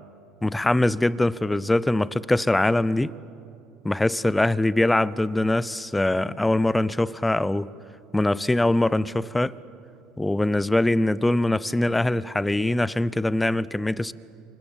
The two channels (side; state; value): both; normal; correlation 0.98